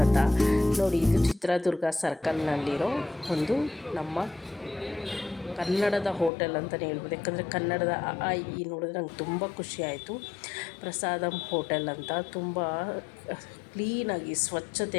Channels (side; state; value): right; drops out; at 6.3 s